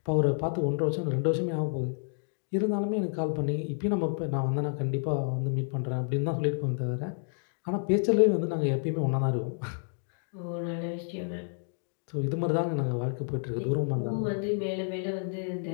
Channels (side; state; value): right; silent; digital silence